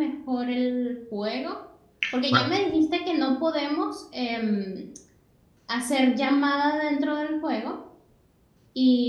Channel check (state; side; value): identical; both; correlation 1.00